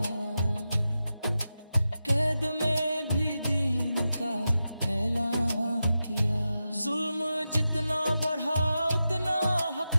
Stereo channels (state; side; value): inverted; both; correlation -0.91